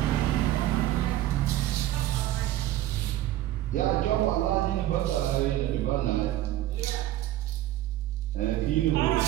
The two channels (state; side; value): quieter; left; 14.1 dB